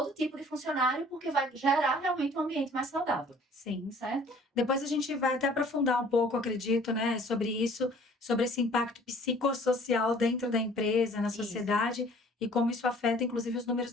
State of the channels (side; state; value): both; normal; correlation 0.53